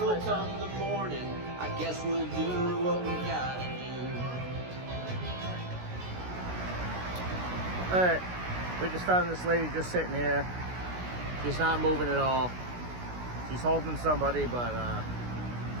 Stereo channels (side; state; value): left; late; 16 ms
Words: will come the morning. I guess we'll do what we gotta do. All right, we just found this lady just sitting here. She's not moving at all. She's holding somebody, but